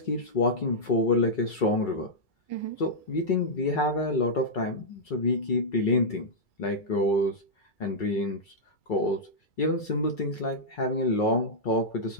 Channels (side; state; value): right; late; 2.3 ms